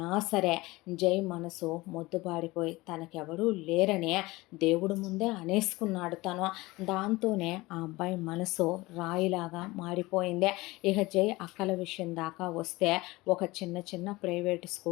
సరే జై మనసు మొద్దుబారిపోయి తనకెవరూ లేరనే దేవుడు ముందే అనేసుకున్నాడు తను. దాంతోనే ఆ అబ్బాయి మనసు రాయిలాగా మారిపోయింది. ఇక జై అక్కల విషయం దాకా వస్తే ఒక చిన్న చిన్న ప్రైవేట్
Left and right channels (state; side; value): quieter; right; 21.0 dB